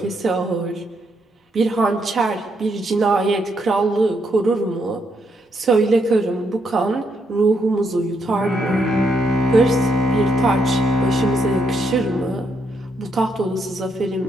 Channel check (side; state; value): both; normal; correlation 0.77